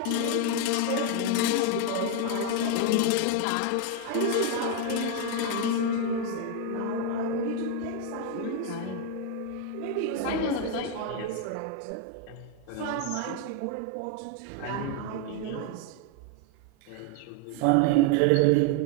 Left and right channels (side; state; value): both; different; correlation 0.01